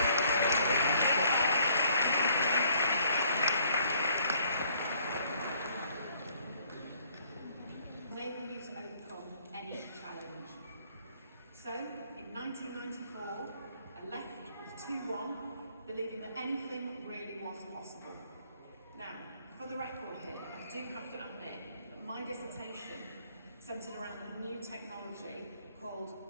Enable you to overcome any challenge. So, in 1994, I left with 2-1, believing that anything really was possible. Now, for the record here, I do have to admit that my dissertation centred around a new technology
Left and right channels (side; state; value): both; inverted; correlation -0.62